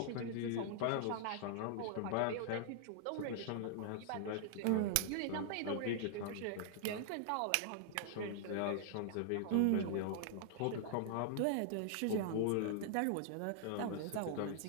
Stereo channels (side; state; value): both; different; correlation -0.01